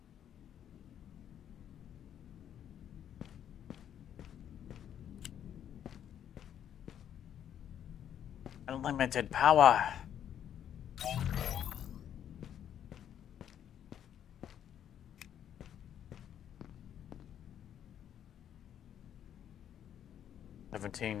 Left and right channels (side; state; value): right; quieter; 9.8 dB